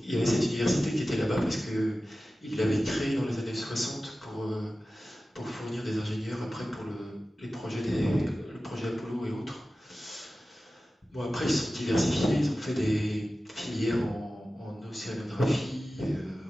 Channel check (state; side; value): normal; both; correlation 0.95